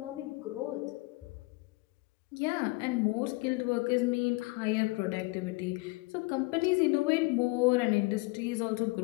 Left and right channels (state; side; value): quieter; right; 24.7 dB